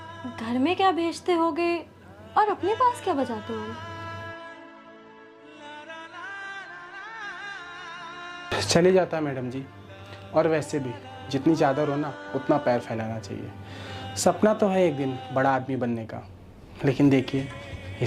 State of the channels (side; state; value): both; identical; correlation 1.00